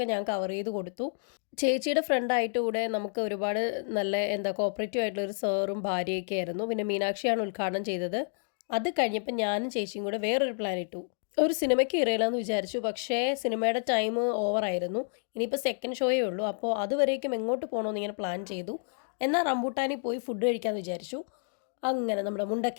ഞാൻ കവർ ചെയ്ത് കൊടുത്തു. ചേച്ചിയുടെ ഫ്രണ്ടായിട്ട് കൂടെ നമുക്ക് ഒരുപാട് നല്ല കോപ്പറേറ്റീവ് ആയിട്ടുള്ള ഒരു സാറും ഭാര്യയൊക്കെ ആയിരുന്നു. പിന്നെ മീനാക്ഷിയാണ് ഉദ്ഘാടനം ചെയ്തത്. അത് കഴിഞ്ഞപ്പോൾ ഞാനും ചേച്ചിയും കൂടെ വേറൊരു പ്ലാൻ ഇട്ടു. ഒരു സിനിമയ്ക്ക് ഇറയില്ലെന്ന് വിചാരിച്ചു. പക്ഷേ സിനിമയുടെ ടൈം ഓവറായിരുന്നു. ഇനിയിപ്പോൾ സെക്കൻഡ് ഷോയേ ഉള്ളൂ. അപ്പോൾ അതുവരേക്കും എങ്ങോട്ട് പോകണമെന്ന് ഇങ്ങനെ പ്ലാൻ ചെയ്തു. എന്നാൽ റംബൂട്ടാനിൽ പോയി ഫുഡ് കഴിക്കാമെന്ന് വിചാരിച്ചു. അങ്ങനെ നമ്മുടെ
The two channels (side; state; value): right; silent; digital silence